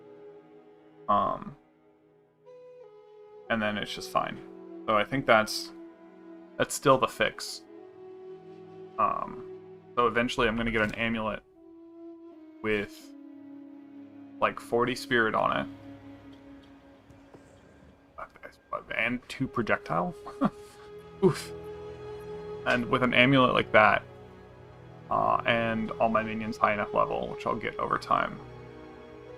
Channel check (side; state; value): both; identical; correlation 1.00